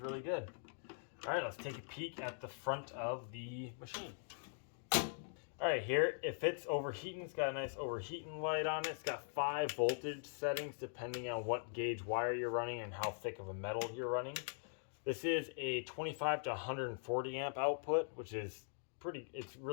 good. All right, let's take a peek at the front of the machine. All right, here, if it's overheating, it's got a nice overheating light on it. It's got 5 voltage settings depending on what gauge wire you're running and how thick of a metal you're running. This is a 25 to 140 amp output, which is it's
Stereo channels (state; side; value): silent; right; digital silence